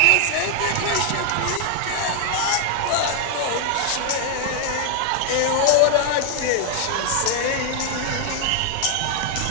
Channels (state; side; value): different; both; correlation 0.00